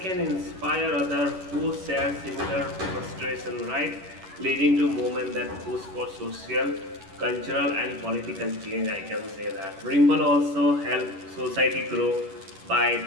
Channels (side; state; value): left; late; 11 ms